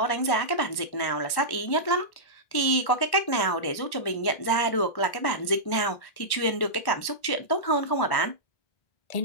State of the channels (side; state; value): right; late; 1.1 ms